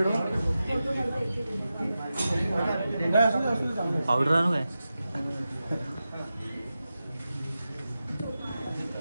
पावडर आणू काय?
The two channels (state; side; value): inverted; both; correlation -0.92